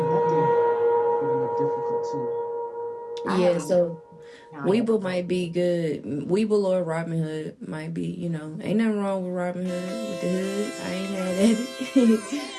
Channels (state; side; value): identical; both; correlation 1.00